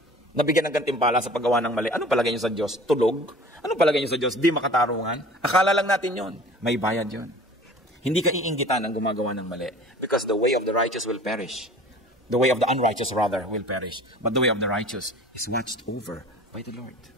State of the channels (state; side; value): normal; both; correlation 0.44